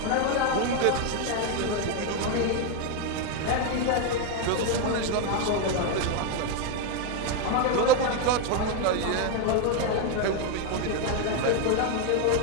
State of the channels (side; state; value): both; different; correlation 0.01